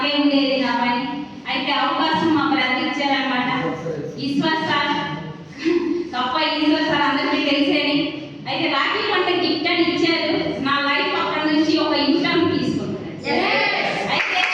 ఉండేది నా పని. అయితే అవకాశం మా బ్రదర్ ఇచ్చారనమాట. ఈశ్వర్ సార్, తప్ప ఈశ్వర్ సార్ అందరికీ తెలిసేది. అయితే రాఖీ పంట గిఫ్ట్ అని ఇచ్చారు. నా లైఫ్ అక్కడ నుంచి ఒక ఇన్కమ్ తీసుకుంటాను.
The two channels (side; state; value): both; identical; correlation 1.00